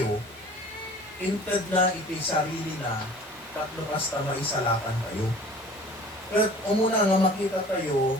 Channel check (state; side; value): normal; both; correlation 0.46